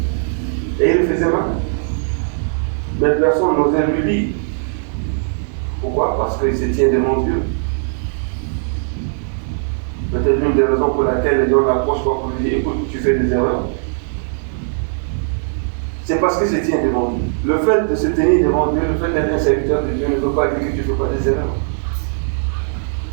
Et il le faisait mal. Mais personne n'osait lui dire. Pourquoi? Parce qu'il se tient devant Dieu. Peut-être l'une des raisons pour laquelle les gens l'approchent pas pour lui dire écoute, tu fais des erreurs. C'est parce qu'il se tient devant Dieu. Le fait de se tenir devant Dieu, le fait d'être un serviteur de Dieu ne veut pas dire que tu ne fais pas des erreurs.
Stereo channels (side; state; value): left; silent; 61 dB below the other